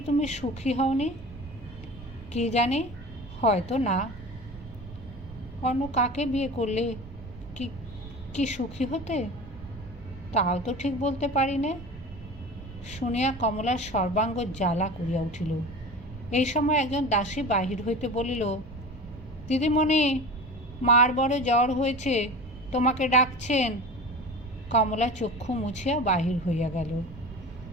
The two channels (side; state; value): right; noise; rumble, 16 dB below the sound